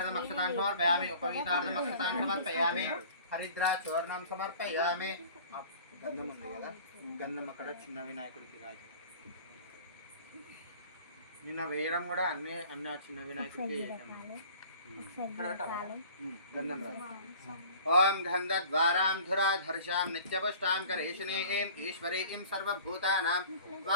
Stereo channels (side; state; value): both; inverted; correlation -0.47